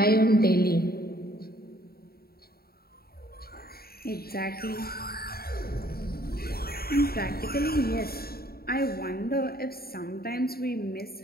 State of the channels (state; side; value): late; right; 0.45 ms